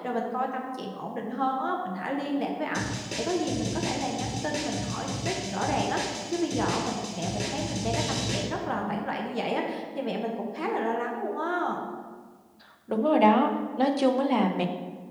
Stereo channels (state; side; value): identical; both; correlation 1.00